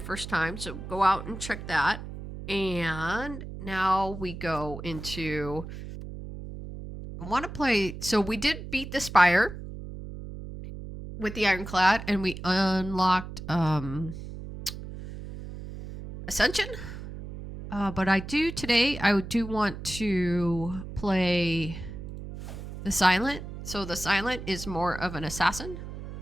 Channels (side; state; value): right; noise; hum, 10 dB below the sound